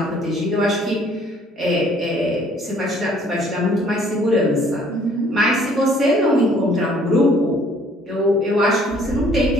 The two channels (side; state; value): both; normal; correlation 0.59